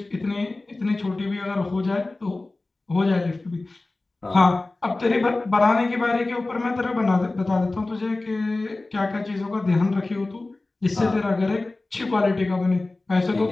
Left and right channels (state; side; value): quieter; right; 3.1 dB